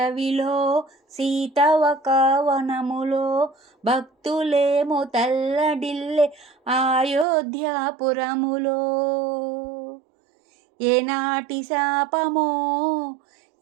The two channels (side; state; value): left; drops out; at 7.2 s